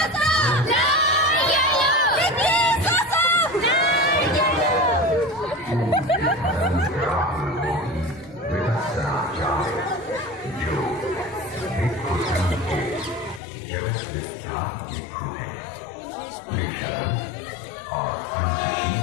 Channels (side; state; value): right; drops out; at 13.4 s